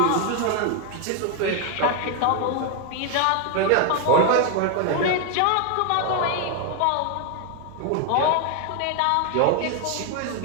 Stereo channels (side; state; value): both; different; correlation 0.01